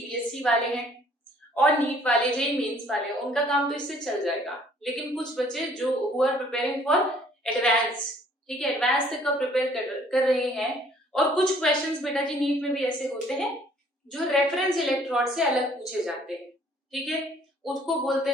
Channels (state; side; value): normal; both; correlation 0.59